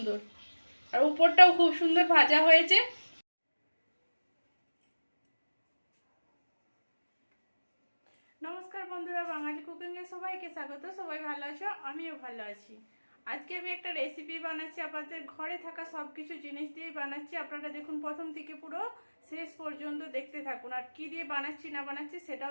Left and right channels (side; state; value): both; inverted; correlation -1.00